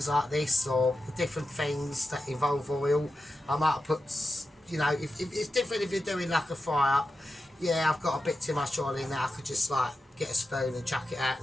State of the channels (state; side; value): normal; both; correlation 0.91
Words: like this or different things that involve oil. I might have put, you know, if it's different if you're doing like a fry up. Yeah, I've got a bit too much oil in there. I could just like get a spoon and chuck it out